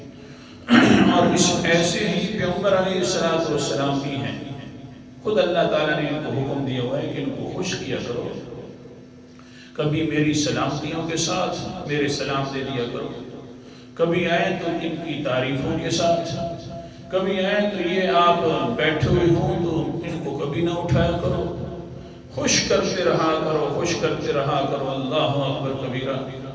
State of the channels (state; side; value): identical; both; correlation 1.00